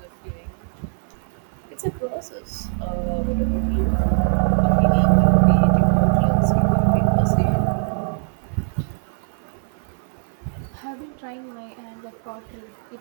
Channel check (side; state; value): left; silent; 55 dB below the other